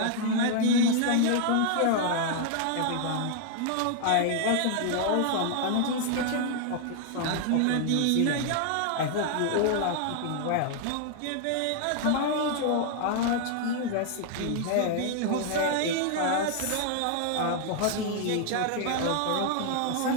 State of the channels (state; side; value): different; both; correlation 0.00